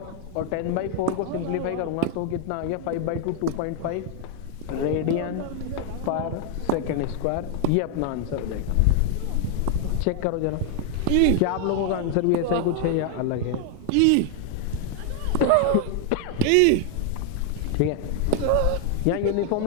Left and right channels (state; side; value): different; both; correlation 0.00